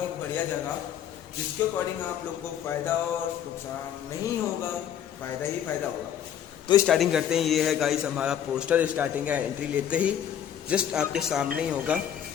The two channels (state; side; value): quieter; right; 9.6 dB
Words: एक बढ़िया जगह, जिसके अकॉर्डिंग आप लोग को फ़ायदा और नुकसान नहीं होगा, फ़ायदा ही फ़ायदा होगा। तो स्टार्टिंग करते हैं। ये है गाइस हमारा पोस्टर। स्टार्टिंग है एंट्री लेते ही जस्ट आपके सामने ही होगा।